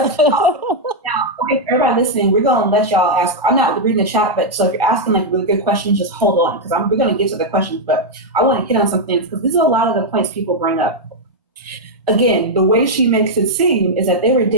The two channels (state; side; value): normal; both; correlation -0.02